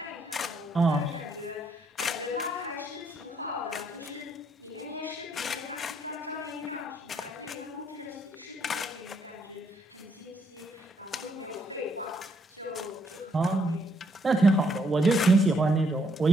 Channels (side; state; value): both; normal; correlation 0.72